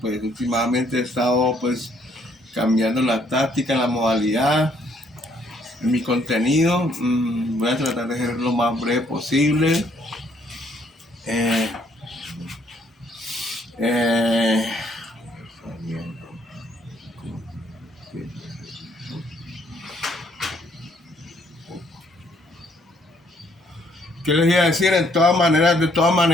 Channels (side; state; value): both; normal; correlation 0.67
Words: Pues últimamente he estado pues cambiando la táctica, la modalidad, mi contenido. Voy a tratar de ser lo más breve posible. Eh, eh, ¿Qué les iba a decir? De todas